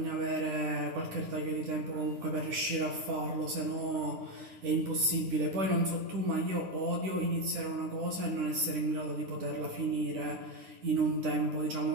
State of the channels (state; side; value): late; left; 10 ms